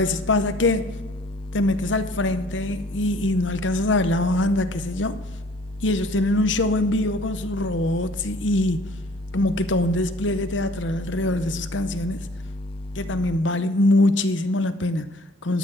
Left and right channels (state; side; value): normal; both; correlation 0.53